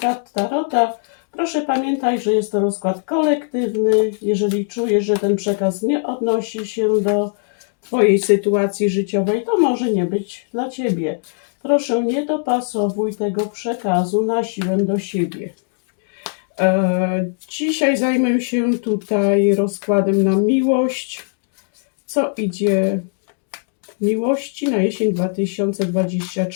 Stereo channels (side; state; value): right; silent; 60 dB below the other